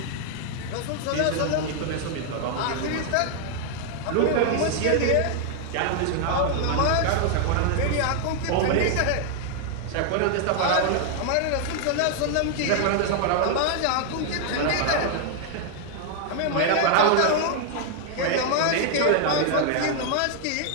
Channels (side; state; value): both; different; correlation 0.00